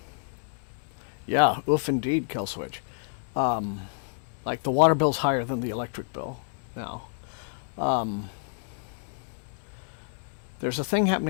Yeah, oof indeed, Kelswitch. Like the water bill's higher than the electric bill now. There's a thing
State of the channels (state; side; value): silent; right; digital silence